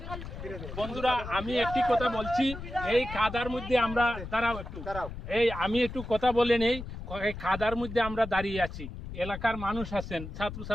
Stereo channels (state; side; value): noise; left; rumble, 9 dB below the sound